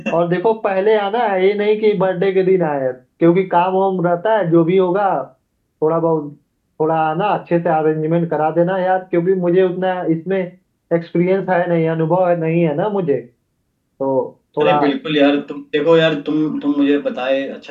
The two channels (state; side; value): identical; both; correlation 1.00